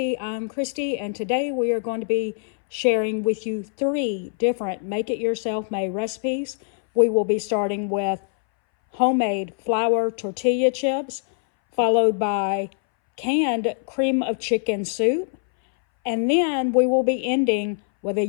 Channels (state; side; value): silent; right; 62 dB below the other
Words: I'm Christy, and today we are going to be sharing with you 3 different make-it-yourself-made recipes. We will be starting with homemade flour tortilla chips, followed by canned cream of chicken soup, and then we will be ending with a